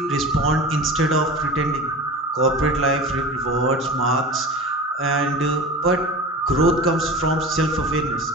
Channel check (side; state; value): both; normal; correlation 0.33